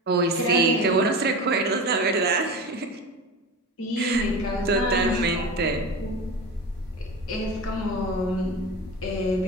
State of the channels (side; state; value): both; normal; correlation 0.28